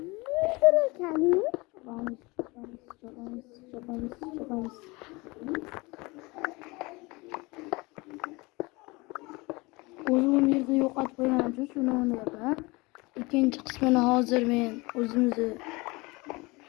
O'zim yerda yo'qotib qo'yganim uchun shuni o'ylayapman. Ikkinchi qismini hozir men o'zimizni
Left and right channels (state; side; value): quieter; right; 24.6 dB